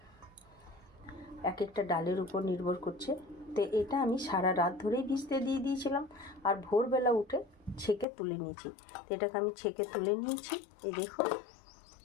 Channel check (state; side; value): drops out; right; at 8.1 s